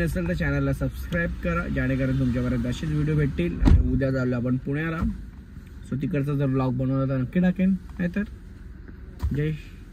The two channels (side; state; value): both; identical; correlation 1.00